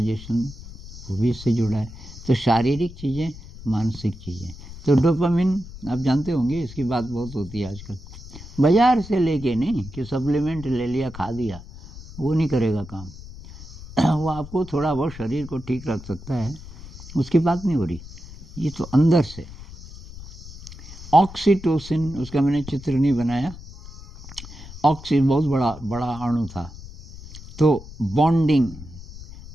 वो भी इससे जुड़ा है। तो शारीरिक चीज़ें, मानसिक चीज़ें, तो डोपामिन आप जानते होंगे, इसकी बात बहुत होती है आजकल। बाज़ार से लेके नहीं कि सप्लीमेंट ले लिया खा दिया, वो नहीं करेगा काम। वो आपको थोड़ा बहुत शरीर को ठीक रख सकता है, उसकी बात नहीं हो रही, ये तो अंदर से। ऑक्सीटोसिन, उसका मैंने चित्र नहीं बनाया, ऑक्सी बहुत बड़ा अणु था, तो बॉन्डिंग,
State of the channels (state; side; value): noise; left; rumble, 15 dB below the sound